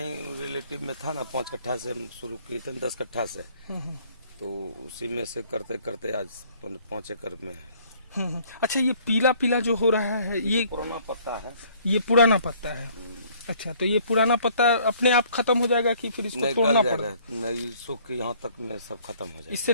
रिलेटिव में था ना, 5 कट्ठा से हम शुरू किए थे, 10 कट्ठा से, तो उसी में से करते करते आज 5 एकड़ में है। अच्छा, ये पीला पीला जो हो रहा है ये पुराना पत्ता है। ये पुराना पत्ता है। अच्छा, तो ये पुराना पत्ता अपने आप खत्म हो जाएगा कि फिर इसको तोड़ना पड़ेगा? नहीं, सूख के यहाँ तक में सब खत्म हो जाएगा। इससे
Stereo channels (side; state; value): both; inverted; correlation -0.59